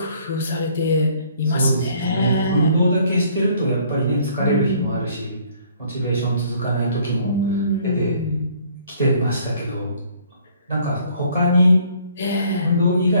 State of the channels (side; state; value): both; inverted; correlation -0.60